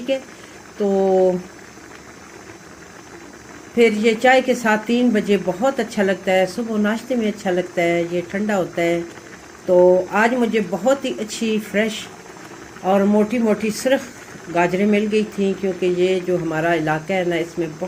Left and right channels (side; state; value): both; identical; correlation 1.00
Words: ہے، تو پھر یہ چائے کے ساتھ 3 بجے بہت اچھا لگتا ہے، صبح ناشتے میں اچھا لگتا ہے، یہ ٹھنڈا ہوتا ہے۔ تو آج مجھے بہت ہی اچھی فریش اور موٹی موٹی سرخ گاجریں مل گئی تھیں، کیونکہ یہ جو ہمارا علاقہ ہے نا، اس میں